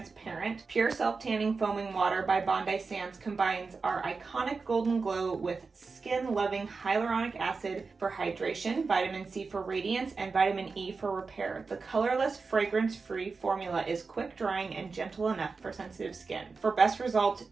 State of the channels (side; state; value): left; quieter; 4.5 dB